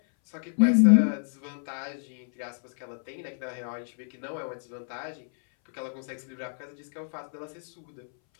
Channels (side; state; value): right; silent; 59 dB below the other